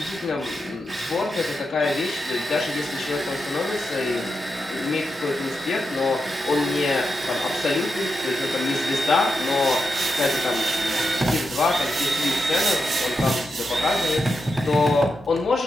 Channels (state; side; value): normal; both; correlation 0.87